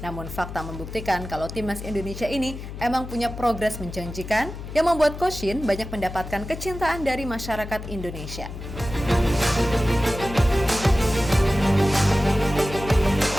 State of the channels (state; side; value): noise; left; hum, 10 dB below the sound